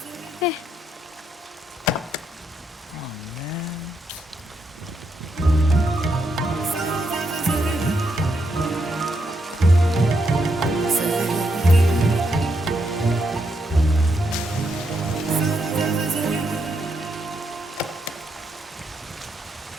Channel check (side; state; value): both; normal; correlation 0.79